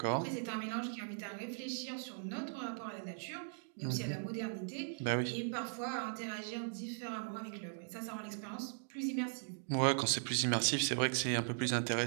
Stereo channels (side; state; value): left; silent; digital silence